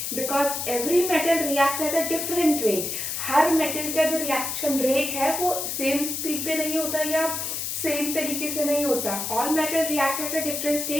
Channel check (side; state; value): left; noise; hiss, 3 dB below the sound